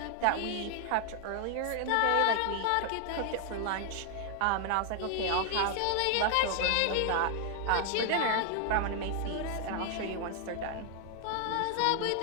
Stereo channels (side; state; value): both; different; correlation 0.00